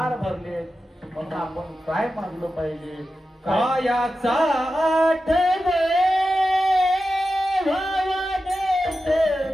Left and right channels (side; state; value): both; normal; correlation 0.92